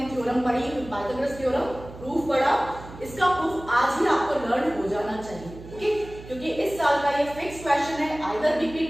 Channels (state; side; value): noise; right; hum, 16 dB below the sound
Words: थ्योरम पढ़ी, पाइथागोरस थ्योरम प्रूफ पढ़ा, इसका प्रूफ आज ही आपको लर्न हो जाना चाहिए। ओके, क्योंकि इस साल का ये फिक्स क्वेश्चन है, आइदर